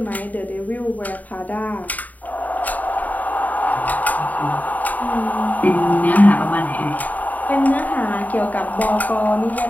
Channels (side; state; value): right; late; 0.078 ms